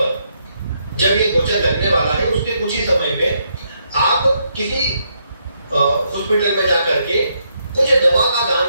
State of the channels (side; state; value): both; inverted; correlation -0.76